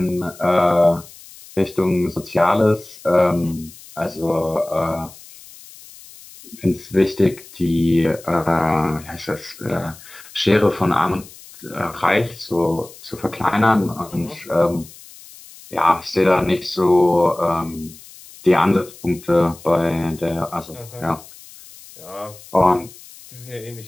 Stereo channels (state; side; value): noise; left; hiss, 20 dB below the sound